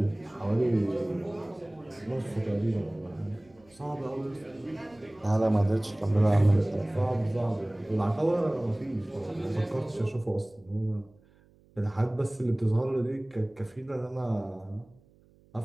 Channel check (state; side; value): noise; right; hum, 30 dB below the sound